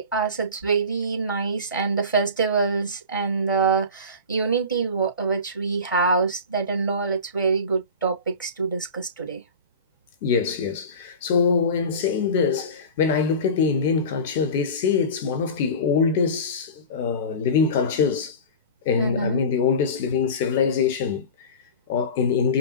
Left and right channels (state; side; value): inverted; both; correlation -0.32